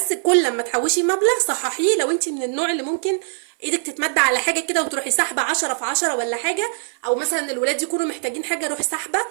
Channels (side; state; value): left; silent; 59 dB below the other